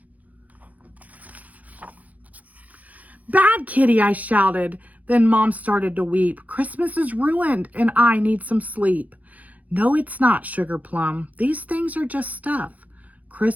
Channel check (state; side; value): late; left; 0.076 ms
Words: "Bad kitty," I shouted. Then Mom started to weep. "Christmas is ruined and I need some sleep." "No, it's not, Sugar Plum. These things are just stuff.